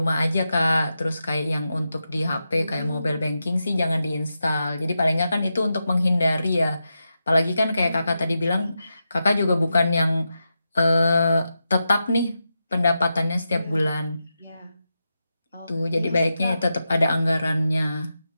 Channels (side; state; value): both; inverted; correlation -0.89